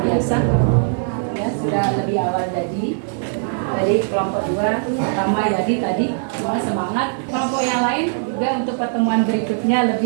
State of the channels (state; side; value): silent; left; 66 dB below the other